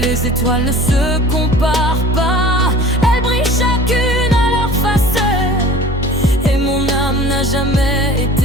étoiles ne se comparent pas, elles brillent chacune à leur façon. Et mon âme n'a jamais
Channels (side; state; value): both; normal; correlation 0.43